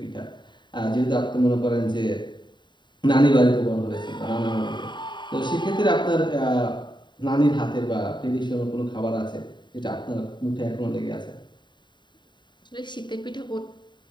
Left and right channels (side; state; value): right; late; 0.22 ms